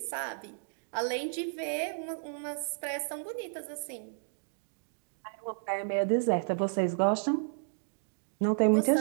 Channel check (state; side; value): silent; left; digital silence